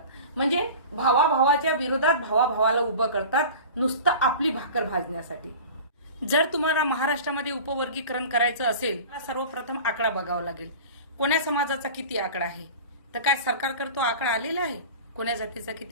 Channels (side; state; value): both; inverted; correlation -0.37